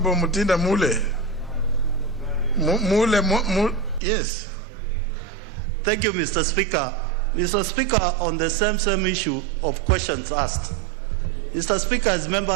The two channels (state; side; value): drops out; left; at 4.0 s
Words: Mutinda Mule. Yes. Thank you, Mr. Speaker. Mr. Speaker, on the same issue of questions asked. Mr. Speaker, as